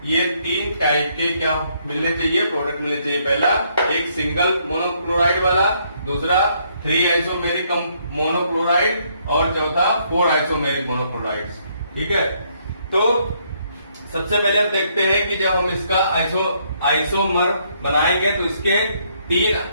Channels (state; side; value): inverted; both; correlation -0.70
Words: ये 3 टाइप के क्या मिलने चाहिए, प्रोडक्ट मिलने चाहिए। पहला एक सिंगल मोनोक्लोराइड वाला, दूसरा 3 आइसोमेरिक मोनोक्लोराइड और चौथा 4 आइसोमेरिक मोनोक्लोराइड। ठीक है, तो सबसे पहले हम देखते हैं कि जब हम इसका आइसोमर बनाएंगे तो इसके